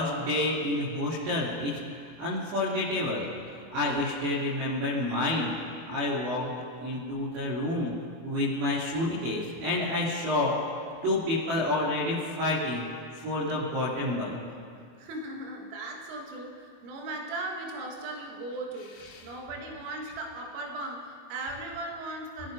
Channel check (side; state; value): left; late; 25 ms